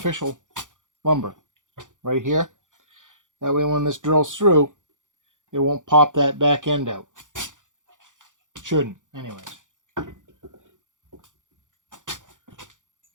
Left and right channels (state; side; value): late; left; 0.87 ms